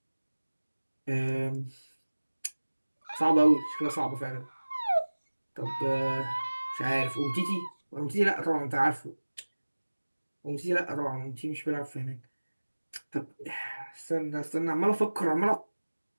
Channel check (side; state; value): both; inverted; correlation -1.00